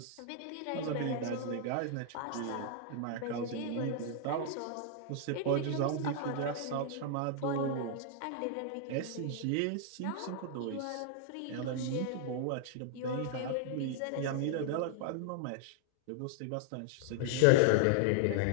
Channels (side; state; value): both; different; correlation 0.00